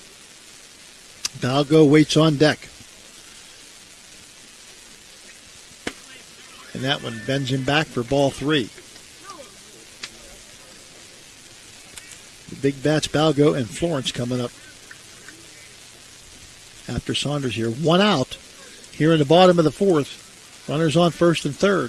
Balgo waits on deck. And that one bends him back for ball 3. The big bats, Balgo and Florence, coming up after Saunders here. 1 out here in the bottom of the fourth. Runners on first and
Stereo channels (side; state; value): both; identical; correlation 1.00